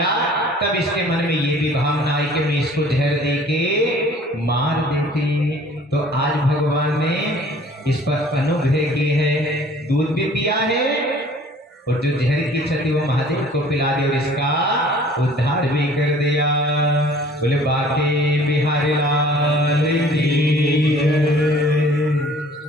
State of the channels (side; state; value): both; normal; correlation 0.52